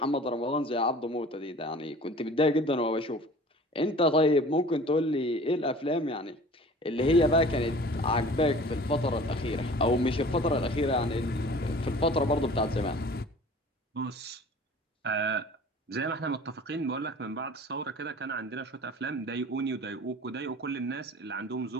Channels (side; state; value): both; normal; correlation 0.44